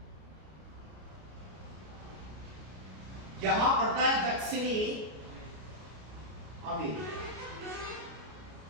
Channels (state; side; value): late; left; 33 ms